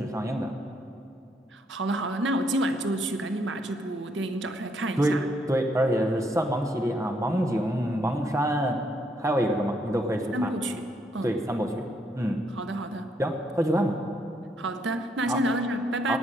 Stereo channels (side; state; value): both; normal; correlation 0.73